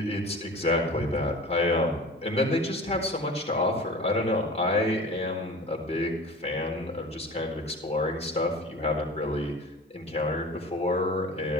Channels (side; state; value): both; normal; correlation 0.37